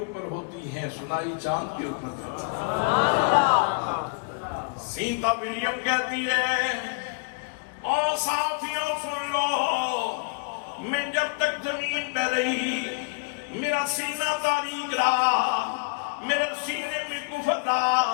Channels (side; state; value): right; quieter; 33.6 dB